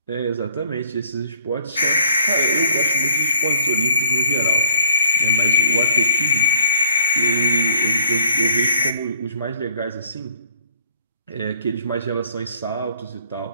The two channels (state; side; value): inverted; both; correlation -0.61